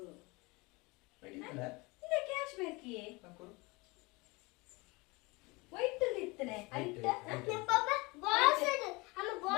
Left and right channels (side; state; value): right; quieter; 25.2 dB